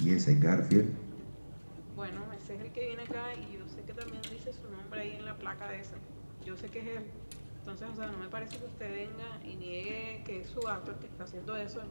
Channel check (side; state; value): both; inverted; correlation -1.00